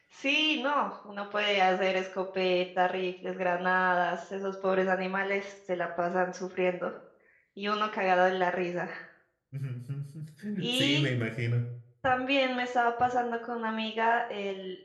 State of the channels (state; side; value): identical; both; correlation 1.00